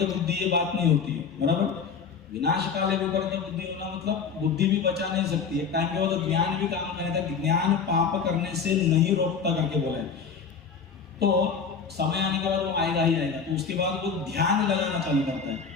बुद्धि, ये बात नहीं होती है, बराबर। विनाशकाले विपरीत बुद्धि होना मतलब बुद्धि भी बचा नहीं सकती है। टाइम के बाद तो ज्ञान भी काम करने था, ज्ञान पाप करने से नहीं रोकता करके बोला है। तो समय आने के बाद वो आएगा ही आएगा। तो उसके बाद वो ध्यान लगाना चालू करता है,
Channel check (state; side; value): quieter; right; 5.9 dB